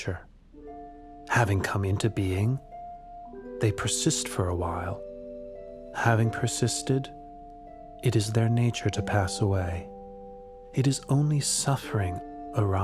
Having come into being, they persist for a while. Having persisted, it is their nature to pass away. It is only suffering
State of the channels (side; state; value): both; identical; correlation 1.00